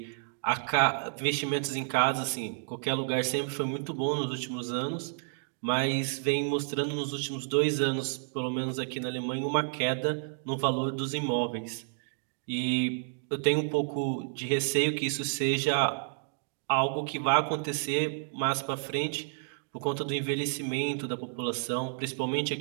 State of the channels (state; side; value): silent; left; digital silence